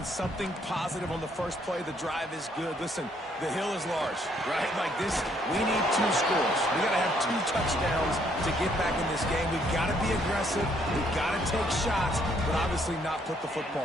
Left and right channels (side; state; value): both; normal; correlation 0.68